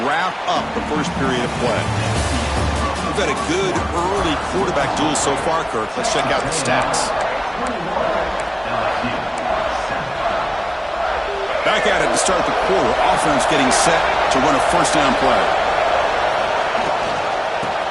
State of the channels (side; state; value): both; identical; correlation 1.00